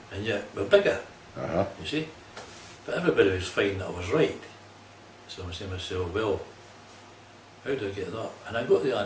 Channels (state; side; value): identical; both; correlation 1.00